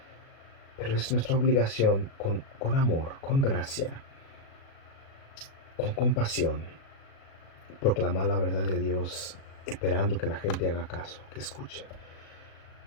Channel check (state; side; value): late; right; 37 ms